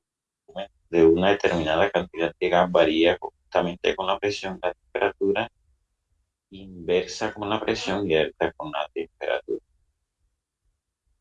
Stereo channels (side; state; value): both; identical; correlation 1.00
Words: de una determinada cantidad de gas varía conjuntamente con la presión, la temperatura, inversa con la presión y alta con la temperatura.